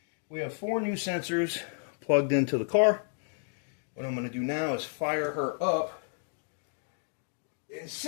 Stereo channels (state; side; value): silent; right; digital silence